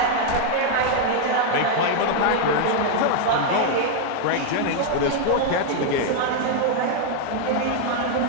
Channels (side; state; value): both; different; correlation 0.00